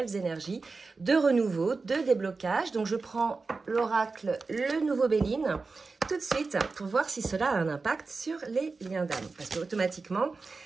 énergies de renouveau, de déblocage. Donc, je prends l'oracle, le nouveau Béline, tout de suite pour voir si cela a un impact sur les liens d'âme. Parce qu'automatiquement,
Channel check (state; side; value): quieter; left; 4.1 dB